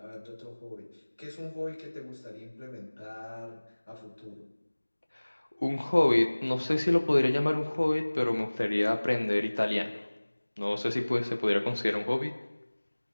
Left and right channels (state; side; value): inverted; both; correlation -1.00